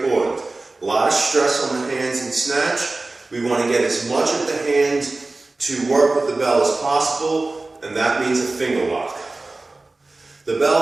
A lot of stress on the hands in snatch. We want to get as much of the hand to work with the bell as possible, and that means a finger lock. The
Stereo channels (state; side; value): quieter; left; 3.2 dB